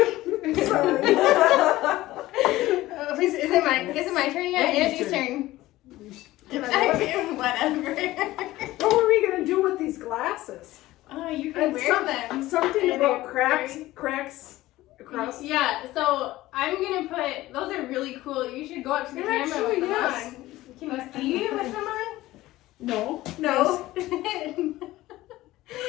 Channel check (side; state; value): right; quieter; 16.9 dB